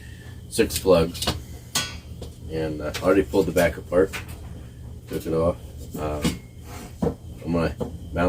6 plugs, and I already pulled the back apart, took it off. I'm going to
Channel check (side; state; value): both; identical; correlation 1.00